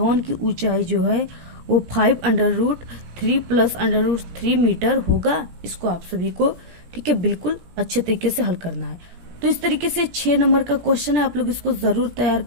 की ऊंचाई जो है वो 5√3 प्लस √3 मीटर होगा। इसको आप सभी को, ठीक है, बिल्कुल अच्छे तरीके से हल करना है। तो इस तरीके से 6 नंबर का क्वेश्चन है, आप लोग इसको जरूर तैयार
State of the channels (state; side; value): late; left; 17 ms